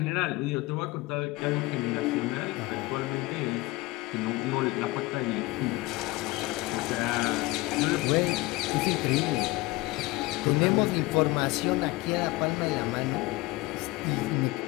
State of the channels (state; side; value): quieter; right; 20.9 dB